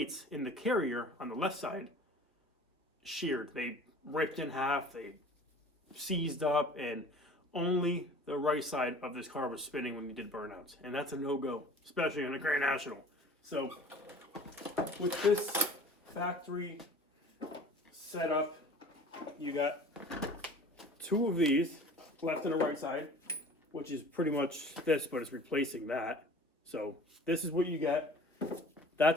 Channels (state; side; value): normal; both; correlation 0.45